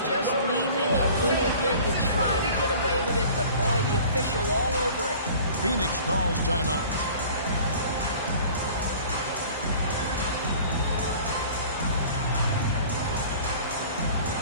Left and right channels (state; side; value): inverted; both; correlation -0.45